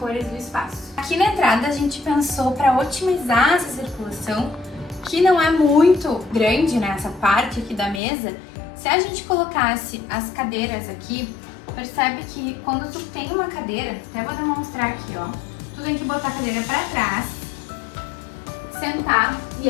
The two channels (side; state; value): right; drops out; at 8.0 s